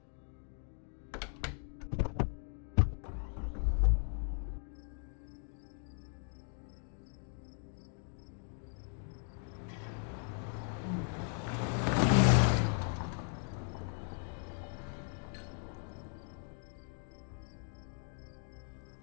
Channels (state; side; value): silent; right; 53 dB below the other